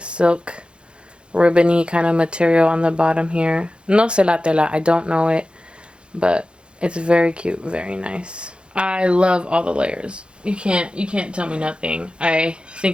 silk ribbony kind of material on the bottom here. No sé la tela, I don't know it, but it's very cute, very nice. I love all the layers. You can't tell me nothing. I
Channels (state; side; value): late; left; 0.055 ms